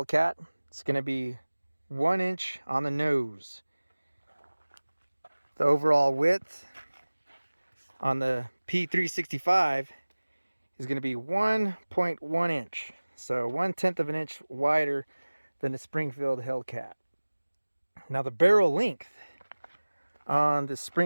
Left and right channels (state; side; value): inverted; both; correlation -1.00